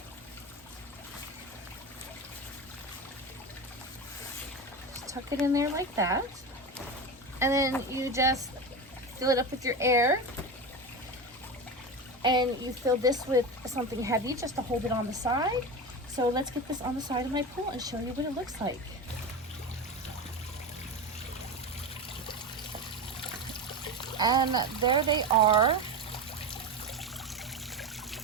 Tuck it in there like that, and then you just fill it up with your air, and you fill this with something heavy just to hold it on the side. So let's get this on the side of my pool and show you what it looks like. And there they are.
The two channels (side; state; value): both; normal; correlation 0.23